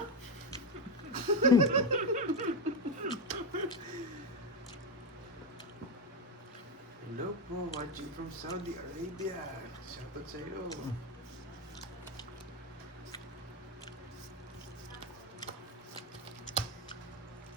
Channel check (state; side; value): normal; both; correlation 0.11